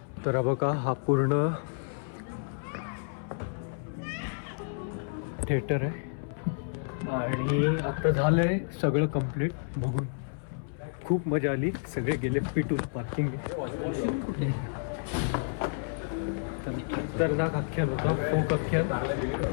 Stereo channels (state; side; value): silent; right; 58 dB below the other